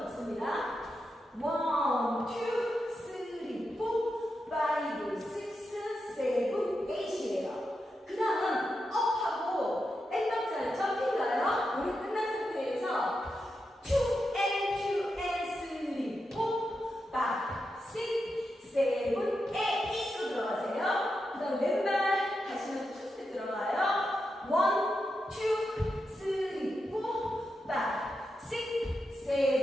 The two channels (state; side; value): normal; both; correlation 0.87